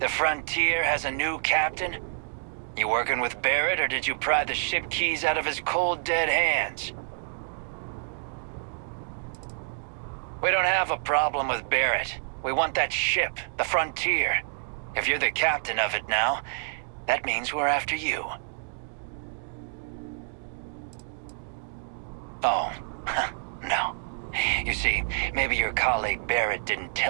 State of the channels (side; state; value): left; silent; digital silence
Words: Frontier has a new captain? You working with Barrett, or did you pry the ship keys out of his cold, dead hands? We don't have a problem with Barrett. We want that ship, the Frontier. If you're the captain of it now, that means we're after you. Oh, no. You see, maybe your colleague Barrett didn't